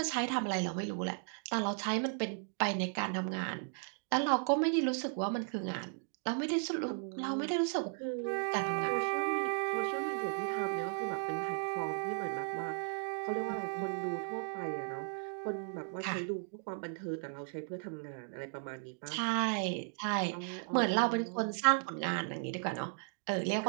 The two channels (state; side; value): silent; left; 54 dB below the other